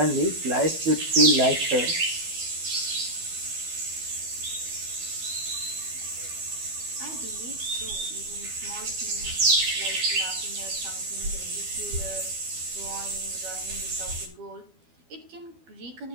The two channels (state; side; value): late; left; 12 ms